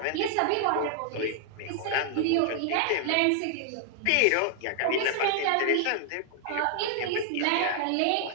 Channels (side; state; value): both; different; correlation 0.00